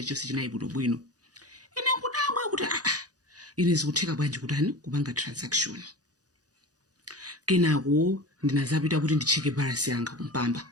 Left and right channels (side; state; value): left; late; 0.68 ms